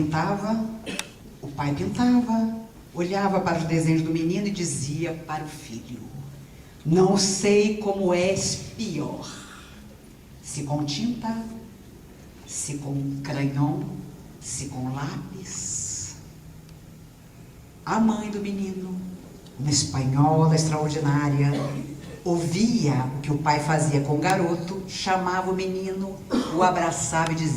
o pai pintava, olhava para os desenhos do menino e dizia para o filho, não sei como és pior, se com tinta, se com crayon, se com lápis. A mãe do menino, uma espanhola extraordinária, ouvia o que o pai fazia com o garoto, chamava o menino, o abraçava e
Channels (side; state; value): both; identical; correlation 1.00